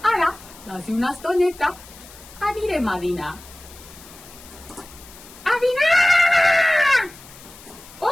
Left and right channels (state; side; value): noise; left; hiss, 20 dB below the sound